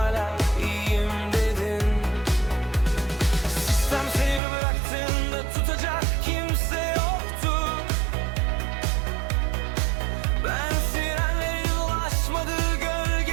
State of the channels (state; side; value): drops out; left; at 4.4 s